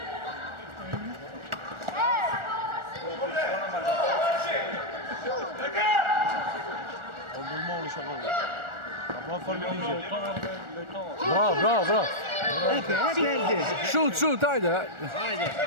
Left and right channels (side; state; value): left; late; 1.4 ms